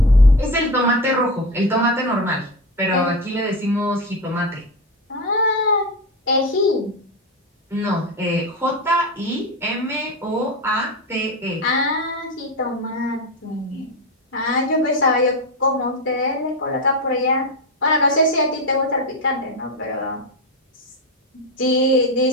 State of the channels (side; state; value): both; normal; correlation 0.18